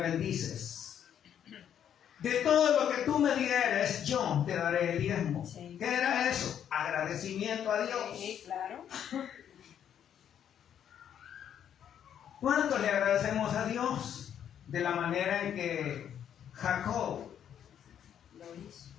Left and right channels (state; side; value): quieter; right; 9.4 dB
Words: de todo lo que tú me dieres, yo te daré el diezmo. Sí. ¿Qué era eso? Agradecimiento a Dios. Sí, claro. ¿Cuánto le agradecemos a Dios de la manera en que Jacob Lo hizo.